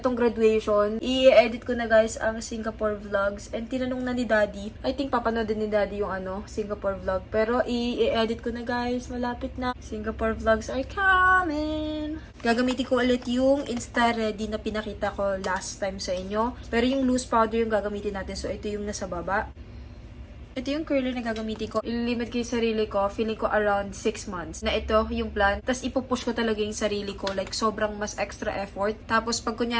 graduation. I-edit ko na guys ang Singapore vlogs. And tinanong na ni Daddy, I think papanood din ni Daddy yung Singapore vlog. Pero i-edit ko na guys, malapit na. Singapore vlogs are coming! Gagamitin ko ulit yung Insta Ready na pinakita ko last time sa inyo. Pero yung loose powder yung gagamitin natin. So ito yung nasa baba. Ito yung curler na gagamitin ko. Ililimit ko yung sarili ko. Feeling ko around 6 months. Na ito yung plan. Tapos ipupush ko talaga yung sarili ko. Like, sobrang mas extra effort. Tapos, pag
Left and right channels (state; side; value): identical; both; correlation 1.00